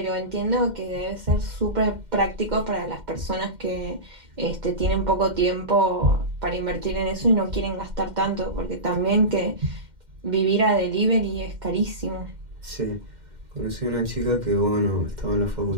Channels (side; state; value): left; late; 2.1 ms